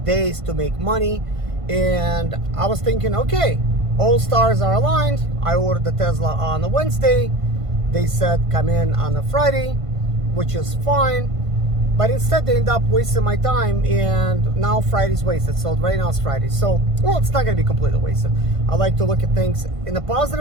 days to make money. And I was thinking, okay, all stars are aligned. I ordered the Tesla on a Wednesday. They said come in on a Friday, which is fine, but instead they end up wasting my time, and now Friday's wasted. So right now it's Friday, so well, it's not going to be completely wasted. I like to look at things in a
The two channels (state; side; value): late; left; 1.5 ms